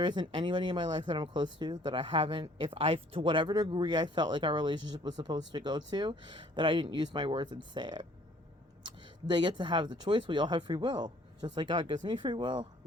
isn't anybody in my life that I'm close to that I haven't, to whatever degree I felt like our relationship was supposed to go to, that I didn't use my words and say it. They get to have the choice. We all have free will. Just like God gives me free will,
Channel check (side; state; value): both; normal; correlation 0.58